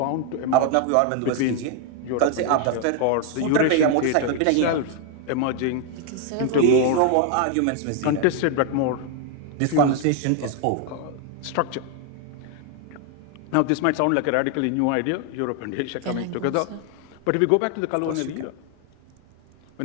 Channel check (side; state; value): both; different; correlation 0.00